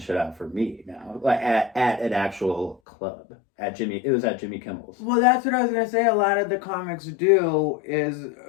out for me now, like at an actual club it was at Jimmy Kimmel's. Well, that's what I was gonna say. A lot of the comics do is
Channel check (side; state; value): right; drops out; at 2.8 s